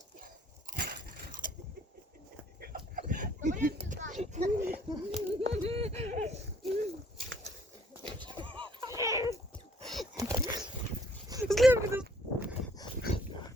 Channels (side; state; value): both; normal; correlation 0.61